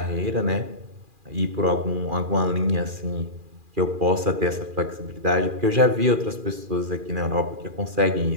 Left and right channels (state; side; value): late; left; 2.4 ms